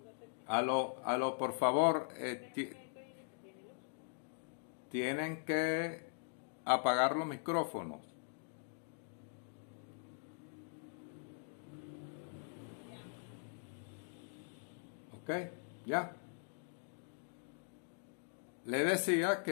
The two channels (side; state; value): right; silent; digital silence